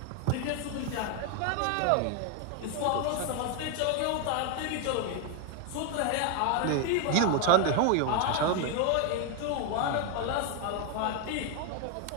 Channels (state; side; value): different; both; correlation 0.01